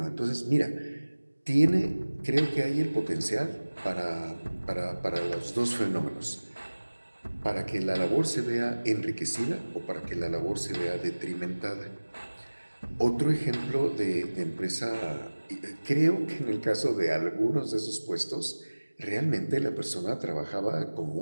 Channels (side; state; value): both; inverted; correlation -1.00